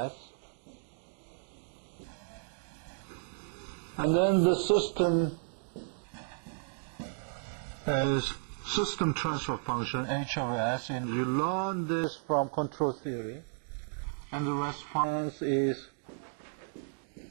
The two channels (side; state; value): left; silent; digital silence